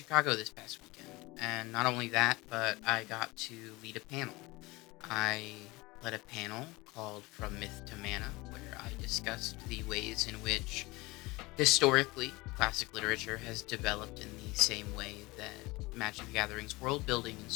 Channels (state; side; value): quieter; right; 22.4 dB